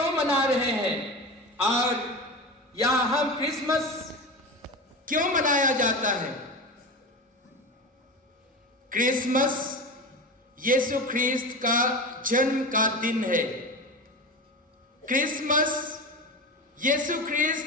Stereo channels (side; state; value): both; normal; correlation 0.26